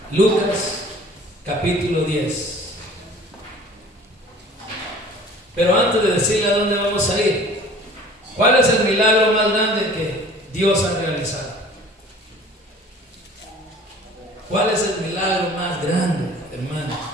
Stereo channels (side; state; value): both; normal; correlation 0.47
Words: Lucas capítulo 10. Pero antes de decirle a dónde vamos a ir, ¿cuál es el milagro más grande que Dios ha realizado? ¿Cuál es el milagro más grande, hermano,